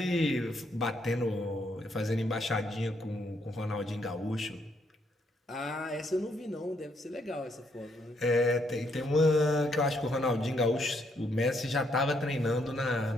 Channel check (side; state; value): both; normal; correlation 0.73